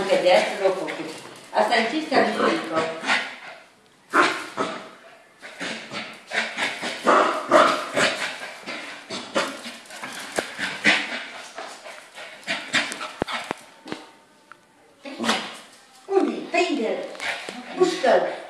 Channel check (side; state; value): both; identical; correlation 1.00